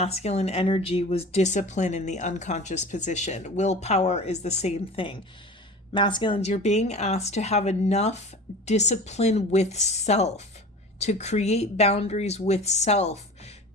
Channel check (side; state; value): both; normal; correlation 0.37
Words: energy was discipline in the unconscious position. Willpower is the same thing. Masculines, you're being asked to have enough discipline with self, to create boundaries with self,